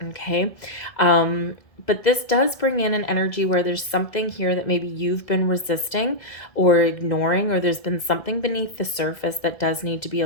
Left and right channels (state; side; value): late; right; 1.6 ms